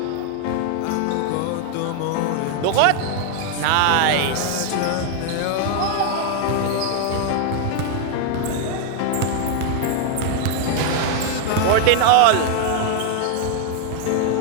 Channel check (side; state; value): both; different; correlation 0.00